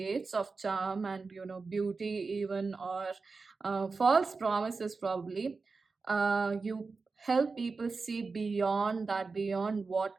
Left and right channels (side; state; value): left; quieter; 4.3 dB